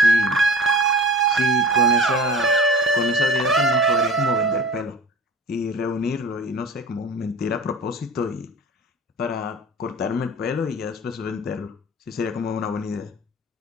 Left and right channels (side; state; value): both; normal; correlation 0.39